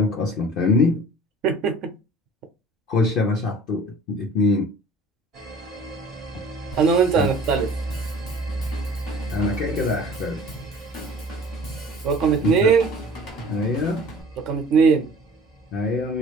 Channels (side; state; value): both; normal; correlation 0.46